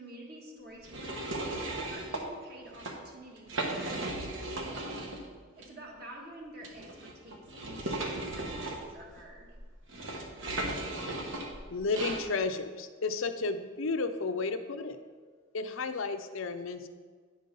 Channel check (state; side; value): normal; both; correlation -0.05